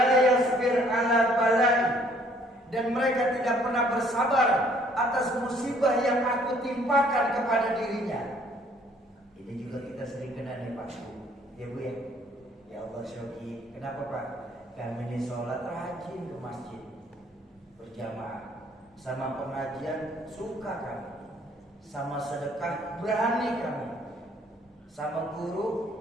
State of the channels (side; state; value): both; normal; correlation 0.61